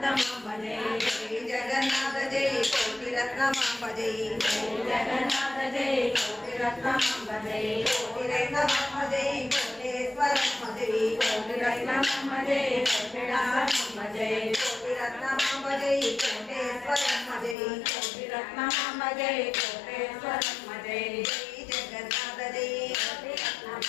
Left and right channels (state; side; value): drops out; right; at 17.6 s